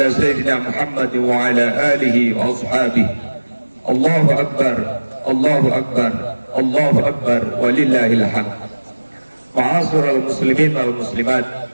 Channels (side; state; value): both; inverted; correlation -1.00